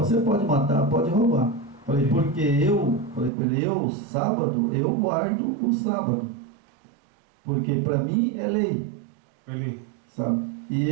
você pode matar, pode roubar. Falei, porque falei para ele, sábado, eu guardo o sábado. Porque para mim é lei. É lei. Sabe? E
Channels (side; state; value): left; drops out; at 3.3 s